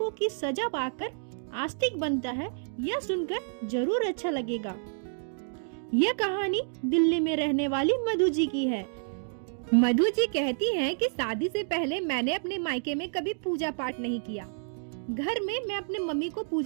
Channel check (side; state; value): left; silent; digital silence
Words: की सजा पाकर आस्तिक बनता है, यह सुनकर जरूर अच्छा लगेगा। यह कहानी दिल्ली में रहने वाली मधु जी की है। मधु जी कहती हैं कि शादी से पहले मैंने अपने मायके में कभी पूजा पाठ नहीं किया। घर में मैं अपने मम्मी को